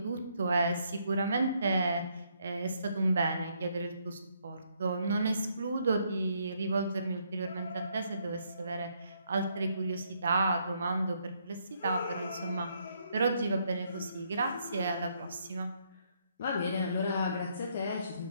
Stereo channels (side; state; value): both; inverted; correlation -0.72